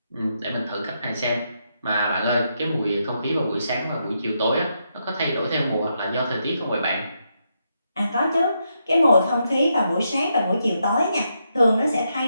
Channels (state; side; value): inverted; both; correlation -0.81